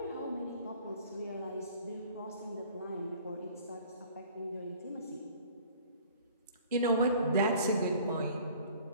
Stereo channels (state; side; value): inverted; both; correlation -0.51